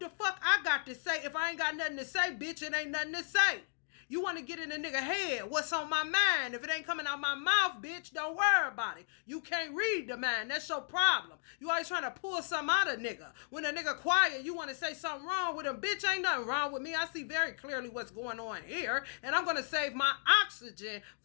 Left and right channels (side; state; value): right; silent; digital silence